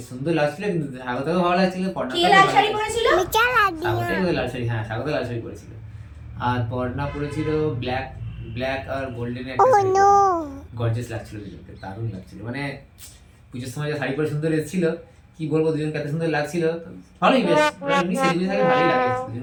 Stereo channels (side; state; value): both; identical; correlation 1.00